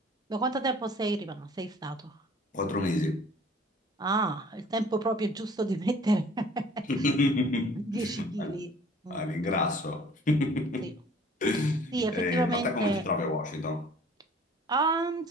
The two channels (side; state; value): both; normal; correlation 0.51